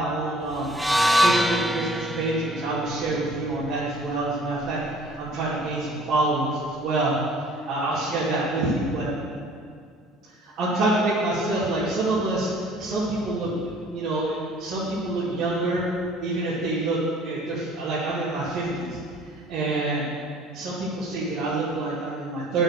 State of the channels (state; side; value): normal; both; correlation 0.53